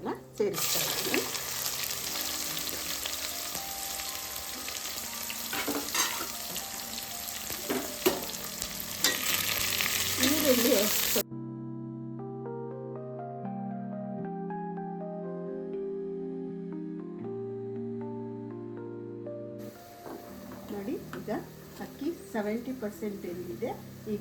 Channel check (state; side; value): identical; both; correlation 1.00